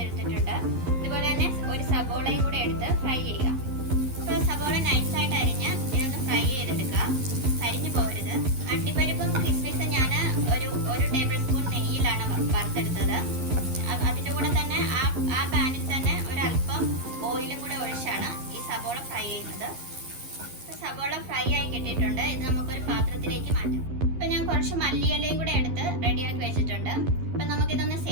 ഇതുപോലെ തന്നെ ഒരു സബോളയും കൂടെ എടുത്ത് ഫ്രൈ ചെയ്യുക. അപ്പൊ സബോള നൈസായിട്ട് അരിഞ്ഞ് ഇതൊന്ന് ഫ്രൈ ചെയ്തെടുക്കുക, അരിഞ്ഞു പോകരുത്. അണ്ടിപ്പരിപ്പും കിസ്മിസും ഞാൻ ഒരു ടേബിൾ സ്പൂൺ നെയ്യിലാണ് വറുത്തെടുത്തത്. അതിന്റെ കൂടെ തന്നെ ആ പാനിൽ തന്നെ ഒരല്പം ഓയിലും കൂടെ ഒഴിച്ചാണ് ഈ സബോള ഫ്രൈ ചെയ്യുന്നത്. സബോള ഫ്രൈ ആയി കിട്ടിയിട്ടുണ്ട്. ഇത് നമുക്കൊരു പാത്രത്തിലേക്ക് മാറ്റാം. അപ്പൊ ഞാൻ കുറച്ച് മല്ലിയിലയും കൂടെ എടുത്ത് റെഡിയാക്കി വെച്ചിട്ടുണ്ട്. അപ്പൊ നമുക്കിതൊന്ന്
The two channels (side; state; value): left; late; 11 ms